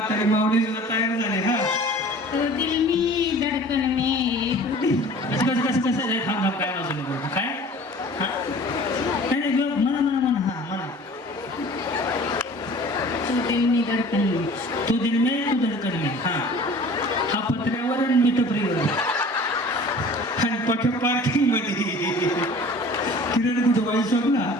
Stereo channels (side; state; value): both; normal; correlation 0.45